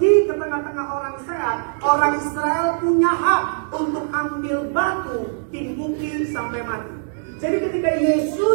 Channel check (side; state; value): left; silent; digital silence